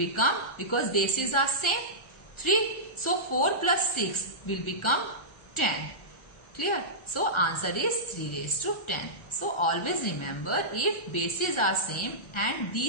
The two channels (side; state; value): right; late; 1.3 ms